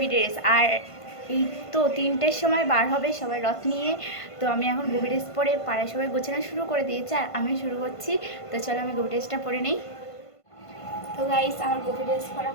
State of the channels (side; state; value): right; late; 1.5 ms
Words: ড্রেস আর এই তো 3টের সময় বার হবে সবাই রথ নিয়ে। তো আমি এখন গোপী ড্রেস পরে পাড়ায় সবাই গোছানো শুরু করে দিয়েছে আর আমি শুরু করছি। তো চলো আমি গোপী ড্রেসটা পরে নেই। তো গাইস আমার গোপী ড্রেস পরা